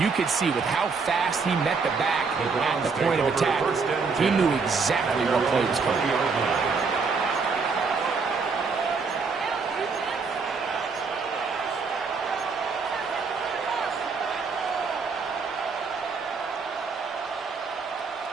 could see with how fast he met the back at the point of attack, he knew exactly what play was coming.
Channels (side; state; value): left; quieter; 4.9 dB